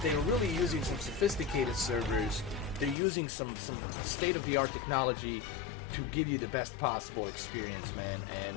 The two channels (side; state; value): right; drops out; at 3.0 s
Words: they're really using some sophisticated servers. They're using some state-of-the-art technology to give you the best possible experience, man.